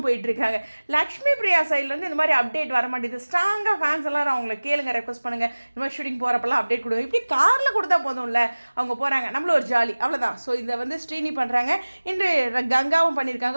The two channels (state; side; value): inverted; both; correlation -1.00